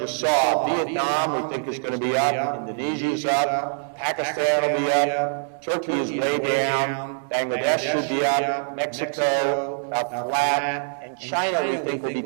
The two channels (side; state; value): left; silent; 63 dB below the other